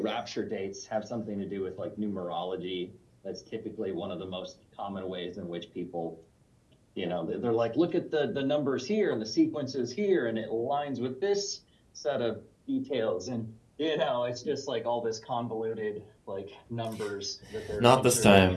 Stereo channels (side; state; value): both; identical; correlation 1.00